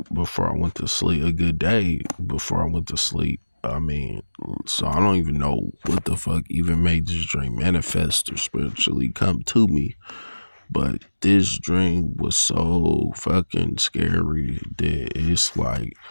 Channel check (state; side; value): inverted; both; correlation -1.00